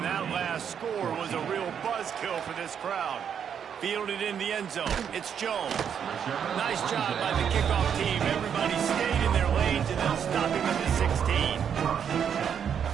that last score was a real buzzkill for this crowd. Fielded in the end zone. It's Jones. Nice job by the kickoff team. Everybody stayed in their lanes, and they'll stop him at the 16.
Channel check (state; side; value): quieter; left; 8.0 dB